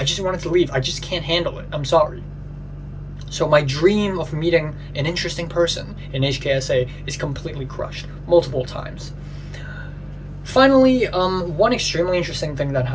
just wanted to leave. I just can't handle it. I'm sorry. So my dream of meeting an interesting person in HKSA is completely crushed multiple times. Finally, one extremely interesting thing that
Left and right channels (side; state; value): both; identical; correlation 1.00